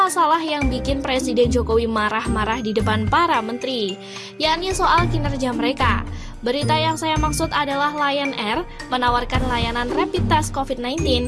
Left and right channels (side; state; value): both; identical; correlation 1.00